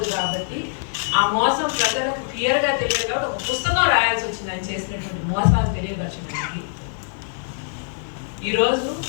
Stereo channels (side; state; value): right; silent; digital silence